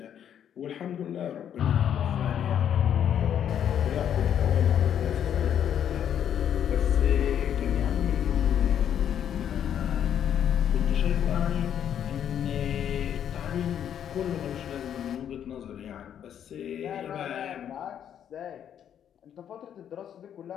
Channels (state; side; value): quieter; right; 9.4 dB